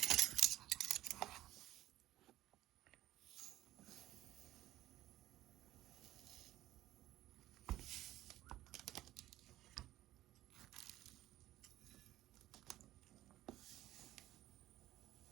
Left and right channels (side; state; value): left; quieter; 14.9 dB